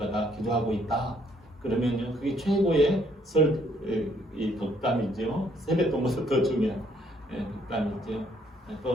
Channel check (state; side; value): normal; both; correlation 0.67